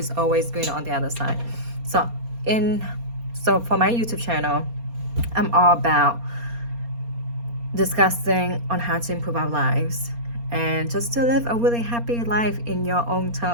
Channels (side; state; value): left; late; 4.3 ms